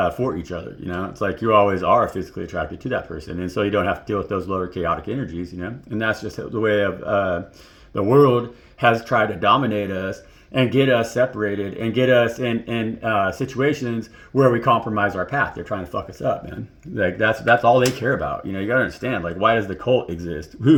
for each other. You know, it's like you always are physically attracted to that person, and so you don't have to deal with those lower chaotic energies. You know, and that's just the way of the world has tried to dominate us and get us separated and get us in situations where we compromise our path. They're trying to fuck us up, man. Like that's all they care about. You know, you gotta understand. Like, why does the cult exist?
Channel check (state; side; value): identical; both; correlation 1.00